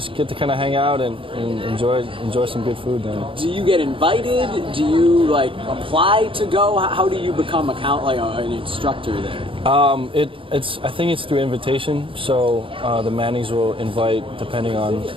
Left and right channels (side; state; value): left; late; 0.25 ms